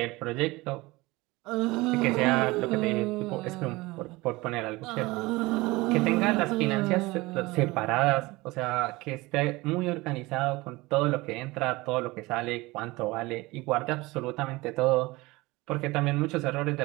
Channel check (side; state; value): left; quieter; 21.6 dB